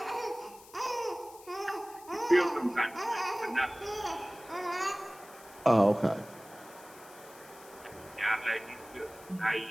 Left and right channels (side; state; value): left; noise; hiss, 21 dB below the sound